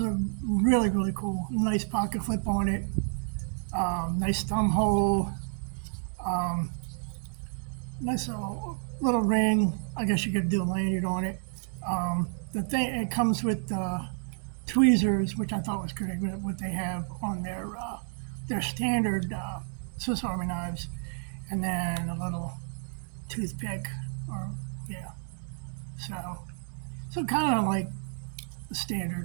a really cool, nice pocket flip on it. Nice thumb hole. Nice little ring. I guess you could do a lanyard on it. The thing, it comes with tweezers, which I thought was great. What they have on their standard Swiss Army knives, and then a little toothpick, or yeah. So kind of like the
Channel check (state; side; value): silent; left; 58 dB below the other